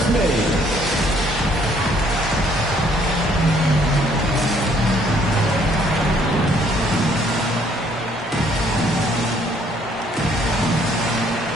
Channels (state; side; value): normal; both; correlation 0.64